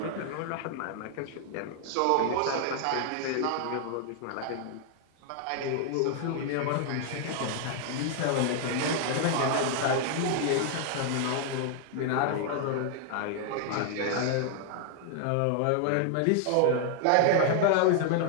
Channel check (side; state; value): both; different; correlation 0.00